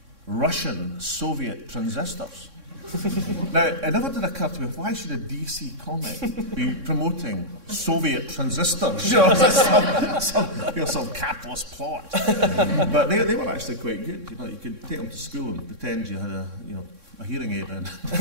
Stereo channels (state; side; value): late; left; 3.6 ms